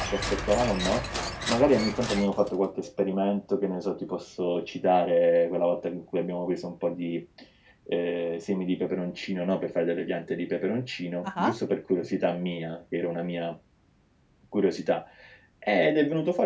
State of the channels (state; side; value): identical; both; correlation 1.00